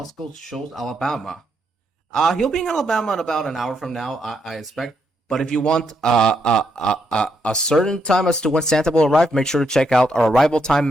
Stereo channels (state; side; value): normal; both; correlation 0.78